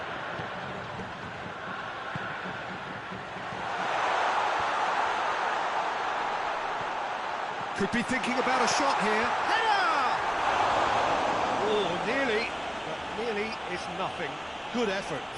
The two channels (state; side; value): identical; both; correlation 1.00